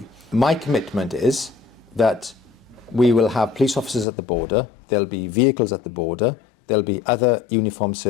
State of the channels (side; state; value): right; drops out; at 4.0 s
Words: My commitment is that we will have police officers at the border, there'll be vehicles at the border, there'll be other uniformed